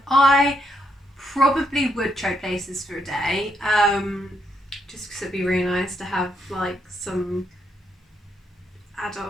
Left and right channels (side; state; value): both; normal; correlation 0.77